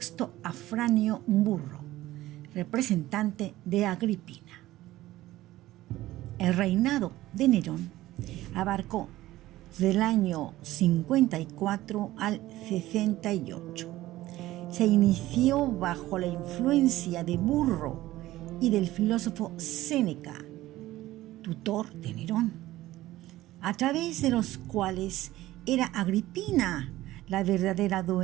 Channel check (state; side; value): quieter; left; 16.2 dB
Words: Afranio Burro, representante de Agripina. El reinado de Nerón abarcó del año 54 al 68. Se inició bajo la influencia de Burro y del filósofo Séneca, tutor de Nerón, a través de los cuales era Agripina la verdadera